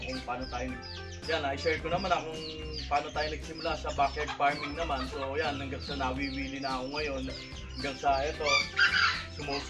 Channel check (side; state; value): both; identical; correlation 1.00